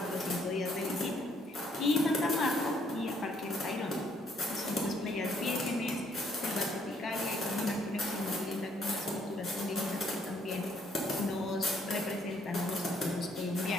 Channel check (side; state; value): both; normal; correlation 0.68